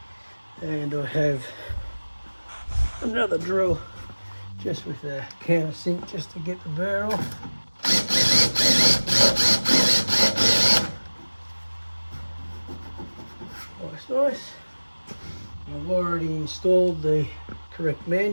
And I have another drill just with a countersink just to get the burr off. Nice. I've already installed the correct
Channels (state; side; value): inverted; both; correlation -1.00